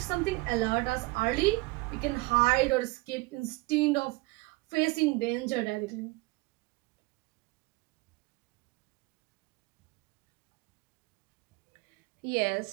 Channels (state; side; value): quieter; left; 23.7 dB